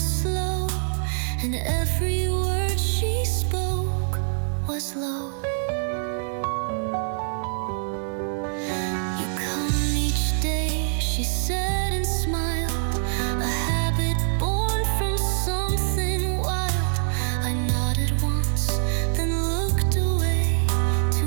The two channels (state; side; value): silent; left; 62 dB below the other